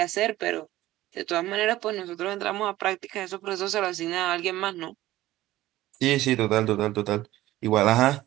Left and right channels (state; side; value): quieter; left; 15.8 dB